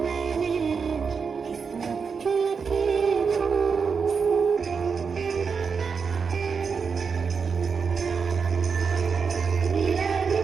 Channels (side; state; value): left; quieter; 5.7 dB